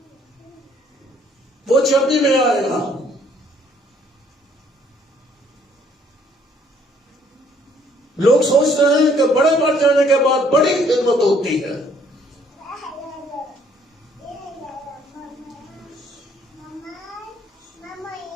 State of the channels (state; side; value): normal; both; correlation 0.63